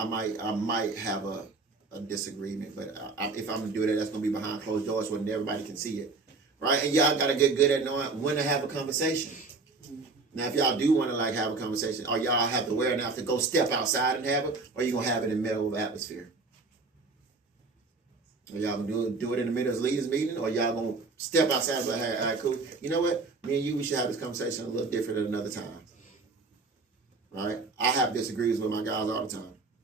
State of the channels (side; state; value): left; quieter; 3.8 dB